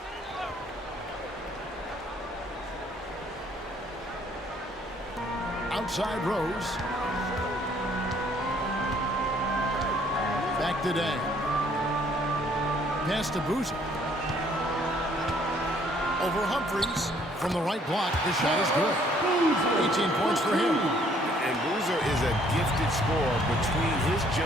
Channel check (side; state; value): both; normal; correlation 0.63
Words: Outside Rose. Back to Day. Pass to Boozer. Over Humphries. From the right block, the shot is good. 18 points for him. And Boozer is a gifted scorer. Between his